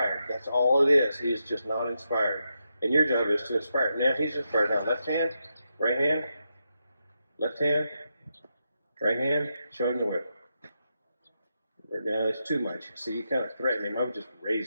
That's all it is. He is just not inspired. And your job is to inspire. Now he's inspired. Now left hand, right hand, left hand, Right hand, show him the whip. Now it's too much. See, you kind of threaten him. I would just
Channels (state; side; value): inverted; both; correlation -0.85